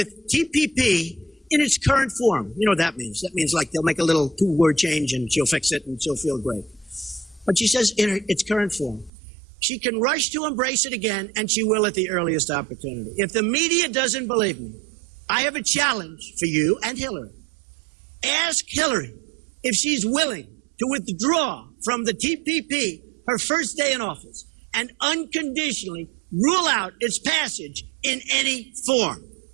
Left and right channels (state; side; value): drops out; left; at 9.1 s